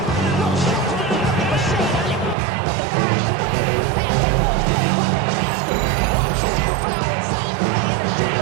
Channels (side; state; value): left; drops out; at 2.4 s